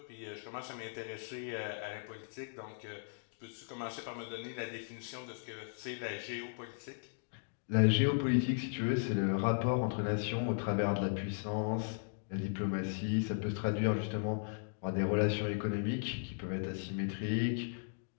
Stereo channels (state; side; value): silent; right; digital silence